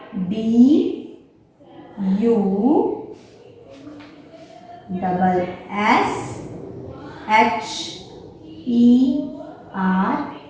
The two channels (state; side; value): identical; both; correlation 1.00